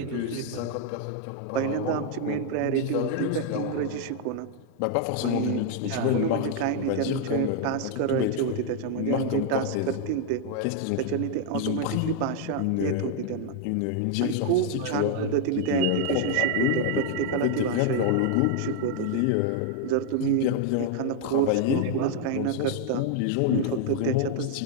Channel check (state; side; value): different; both; correlation 0.00